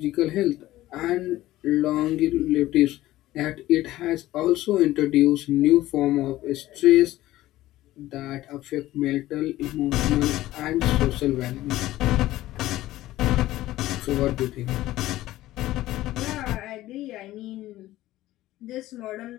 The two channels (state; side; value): quieter; right; 15.8 dB